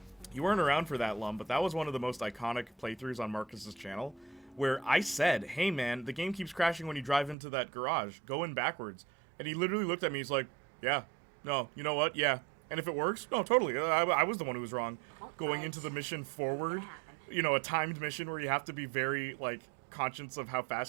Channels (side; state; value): left; drops out; at 7.4 s